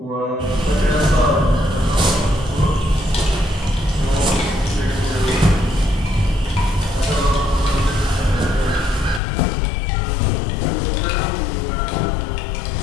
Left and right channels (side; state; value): right; drops out; at 9.2 s